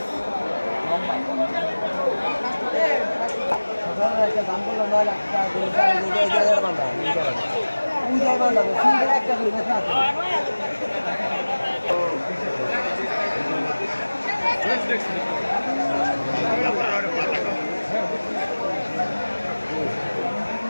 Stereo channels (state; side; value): inverted; both; correlation -1.00